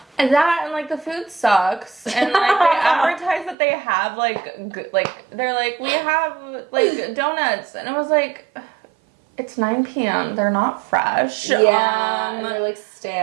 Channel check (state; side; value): drops out; left; at 3.6 s